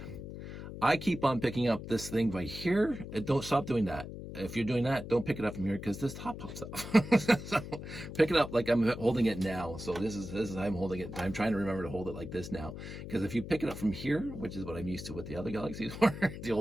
I keep on picking up this thing right here. Don't stop doing that. If you're doing that, don't pick it up from here because this top pops up. So pick it up like I'm holding it now. So this is how I'm holding it. I'm trying to remember to hold it like this now, because if you pick it up from here, which is what I'm used to with the other Galaxies, the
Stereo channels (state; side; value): noise; left; hum, 10 dB below the sound